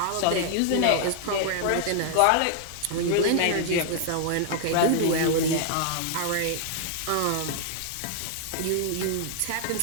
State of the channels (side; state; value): both; different; correlation 0.00